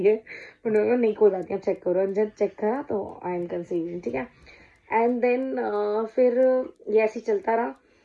है। उन्होंने कहा नहीं कोई बात नहीं, आप चेक करो। जब चेक करा तो आई एम कंसीविंग। ठीक है, एंड देन फिर ये ऐसे ही चलता रहा।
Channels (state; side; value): identical; both; correlation 1.00